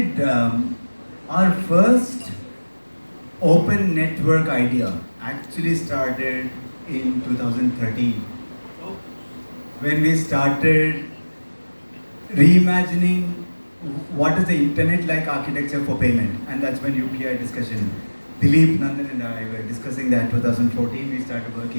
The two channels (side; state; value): both; inverted; correlation -1.00